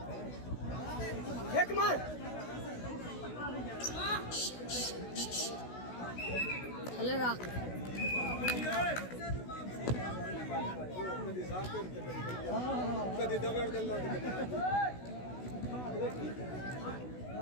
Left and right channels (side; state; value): right; late; 16 ms